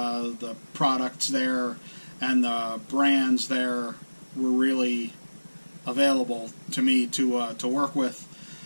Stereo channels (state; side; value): inverted; both; correlation -1.00